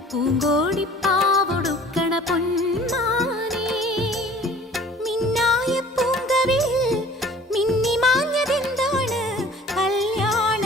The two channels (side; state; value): both; normal; correlation 0.48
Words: പൂങ്കോടിപ്പാവൊടുക്കണ പൊന്മാനേ. മിന്നായ പൂങ്കവിൽ മിന്നിമാഞ്ഞതെന്താണ് കല്യാണ